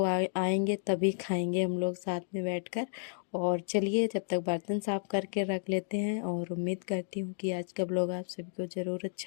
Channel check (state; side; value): silent; right; digital silence